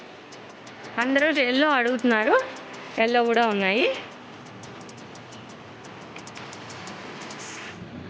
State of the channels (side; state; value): both; identical; correlation 1.00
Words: అందరూ ఎల్లో అడుగుతున్నారు. ఎల్లో కూడా ఉన్నాయి.